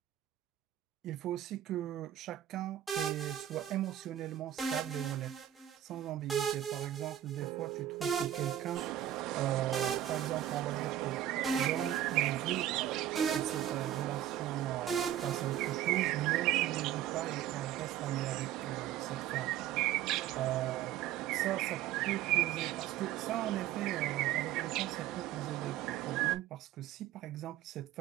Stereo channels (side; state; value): left; quieter; 12.1 dB